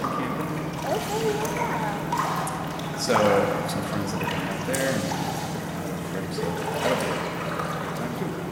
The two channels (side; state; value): both; identical; correlation 1.00